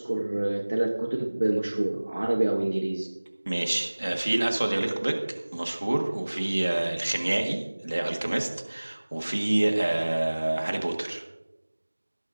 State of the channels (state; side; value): inverted; both; correlation -1.00